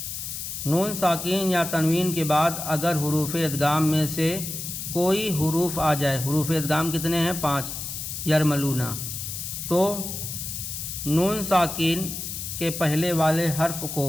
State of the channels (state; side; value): noise; left; hiss, 6 dB below the sound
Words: نون ساکن یا تنوین کے بعد اگر حروف ادغام میں سے کوئی حروف آ جائے، حروف ادغام کتنے ہیں؟ 5، یرملون، تو نون ساکن کے پہلے والے حرف کو